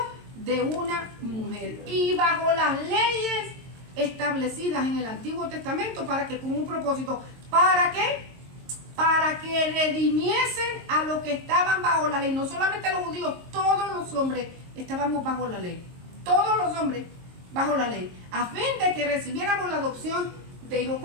de una mujer y bajo las leyes establecidas en el Antiguo Testamento, para que con un propósito, ¿para qué? Para que redimiesen a los que estaban bajo la ley. No solamente los judíos, todos los hombres estábamos bajo la ley. Todos los hombres bajo la ley. A fin de que recibiéramos la adopción de hijos.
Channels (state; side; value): late; left; 22 ms